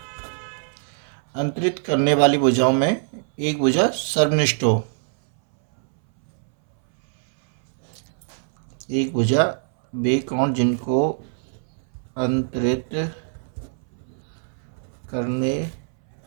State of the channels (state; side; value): silent; left; 63 dB below the other